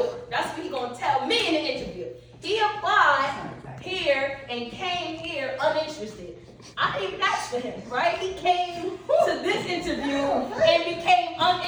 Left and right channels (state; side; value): identical; both; correlation 1.00